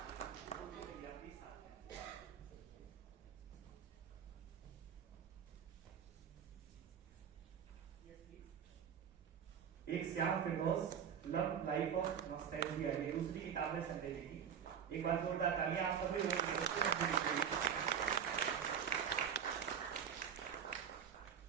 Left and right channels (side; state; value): left; quieter; 7.9 dB